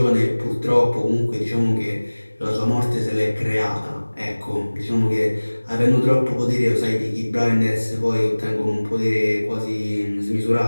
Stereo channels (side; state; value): both; inverted; correlation -1.00